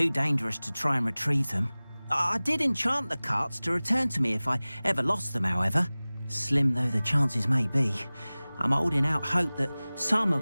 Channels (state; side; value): inverted; both; correlation -0.99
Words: dangerous to try and retrieve them. I did enchant the carts to return to me if I ever lost them, however. Slim though the chances may be, I'm holding out hope that some